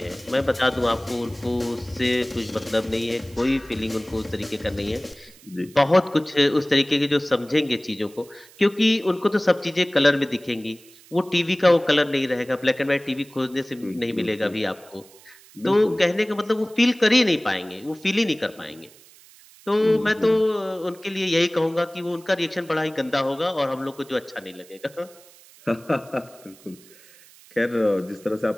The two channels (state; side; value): noise; right; hiss, 24 dB below the sound